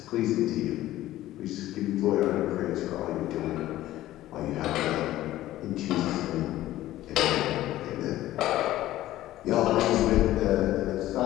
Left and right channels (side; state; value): right; quieter; 14.9 dB